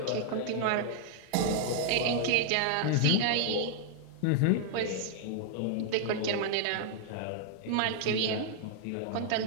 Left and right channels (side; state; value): both; different; correlation -0.01